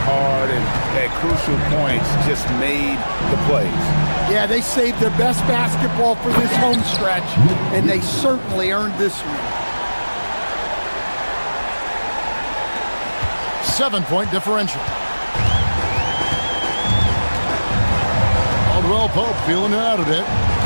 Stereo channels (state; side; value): inverted; both; correlation -1.00